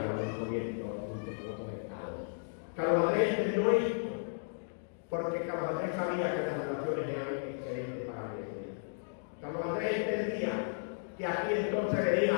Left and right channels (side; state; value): right; silent; digital silence